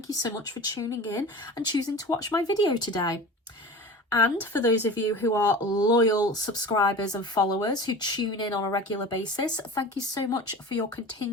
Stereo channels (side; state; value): both; normal; correlation 0.35